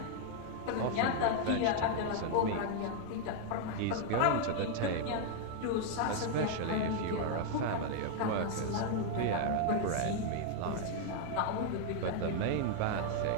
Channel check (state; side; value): different; both; correlation 0.00